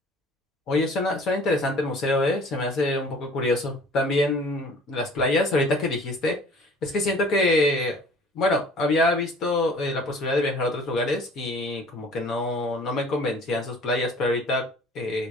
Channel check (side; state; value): both; normal; correlation 0.50